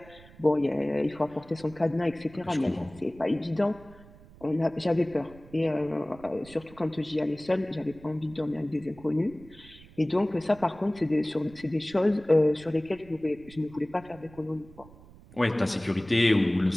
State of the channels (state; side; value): noise; right; rumble, 22 dB below the sound